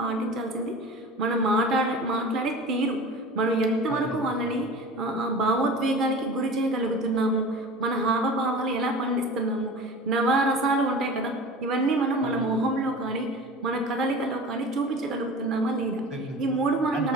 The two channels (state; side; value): normal; both; correlation 0.37